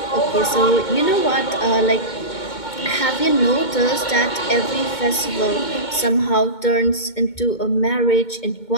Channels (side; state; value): right; late; 2.2 ms